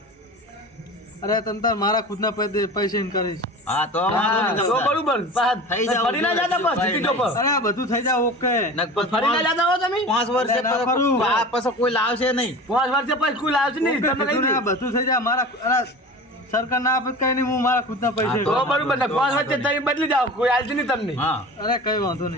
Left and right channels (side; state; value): both; normal; correlation 0.35